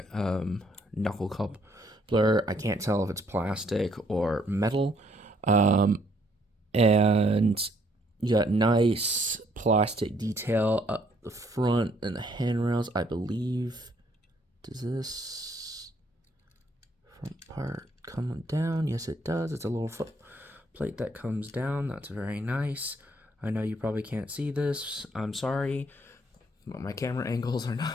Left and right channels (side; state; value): both; normal; correlation 0.67